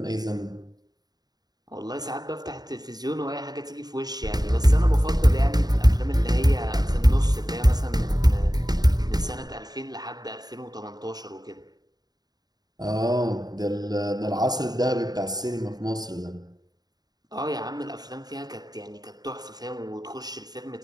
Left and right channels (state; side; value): late; left; 0.19 ms